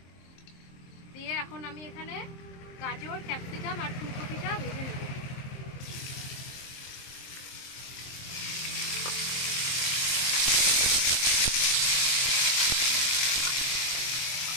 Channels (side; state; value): right; late; 23 ms